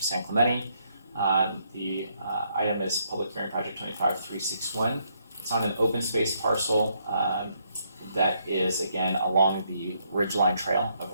Clemente. The item is Public Hearing Project 25361. It's on an open space parcel that is, again, along the Ridgeline Trail of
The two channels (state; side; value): inverted; both; correlation -0.74